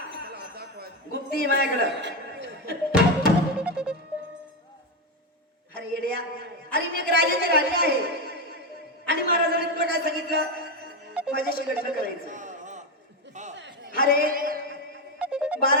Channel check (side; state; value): both; normal; correlation 0.11